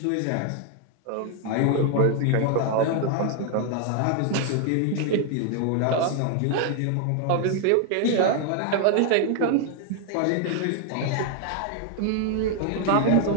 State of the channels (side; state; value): both; different; correlation 0.00